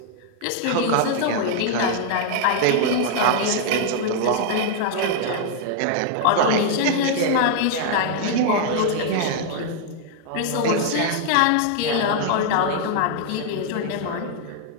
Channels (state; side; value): different; both; correlation 0.00